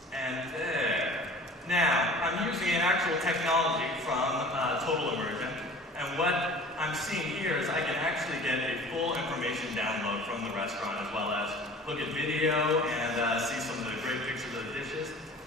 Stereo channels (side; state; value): both; normal; correlation 0.44